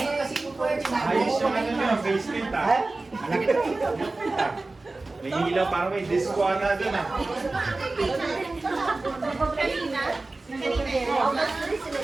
yan. Ayos yung ano nyo, basement ah. May ilaw para may disco ata doon ah.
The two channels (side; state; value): left; quieter; 3.2 dB